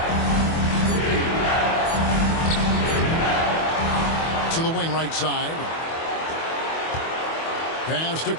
To the wing right side. Pass to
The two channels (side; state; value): right; late; 25 ms